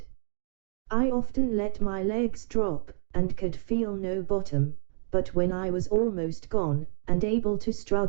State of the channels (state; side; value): silent; left; digital silence